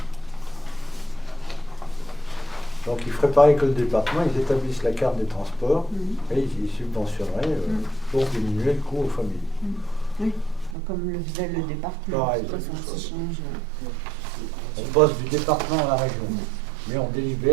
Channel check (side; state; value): left; drops out; at 10.8 s